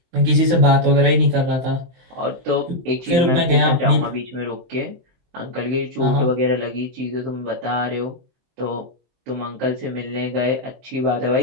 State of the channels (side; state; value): left; late; 23 ms